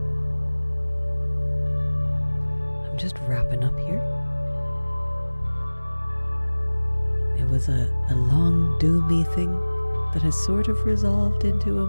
I'm just wrapping up here. It was a long, doomy thing that has sort of resolved into a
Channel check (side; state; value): both; inverted; correlation -1.00